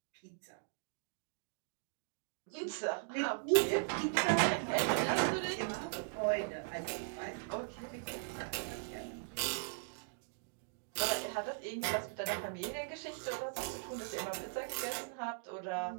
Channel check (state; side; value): silent; left; digital silence